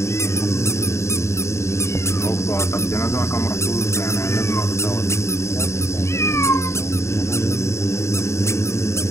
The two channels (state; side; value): late; right; 0.13 ms